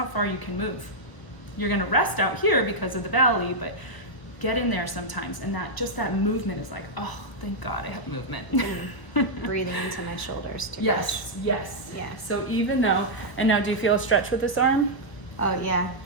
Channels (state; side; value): late; right; 1.0 ms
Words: far you can move. You're gonna rest out here because of the belly, but get in there sometimes, and that movement is like, oh, thank God I have movement. Breathing into my shoulders too. Yes, yes. Yeah. So even though, and now do you feel a stretch with this arm? Oh, yeah.